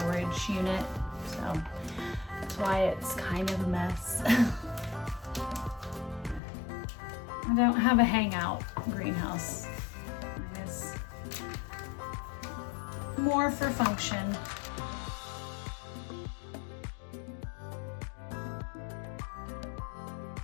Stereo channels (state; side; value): drops out; right; at 6.4 s